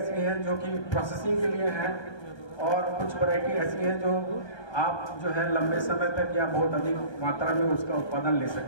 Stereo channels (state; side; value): late; right; 1.2 ms